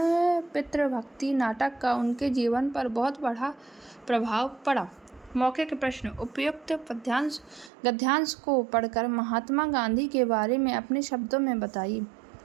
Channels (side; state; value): left; drops out; at 7.7 s